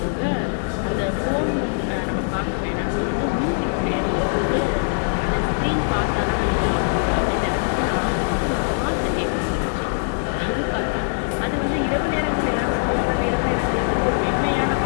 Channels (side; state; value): right; silent; digital silence